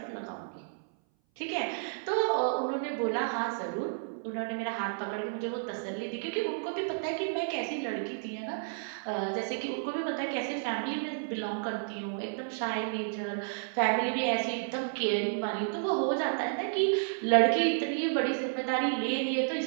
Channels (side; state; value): left; silent; 57 dB below the other